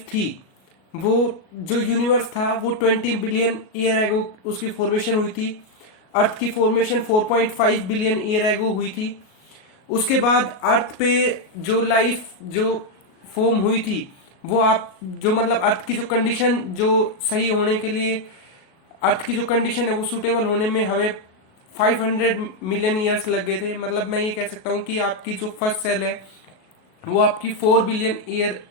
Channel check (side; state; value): right; late; 37 ms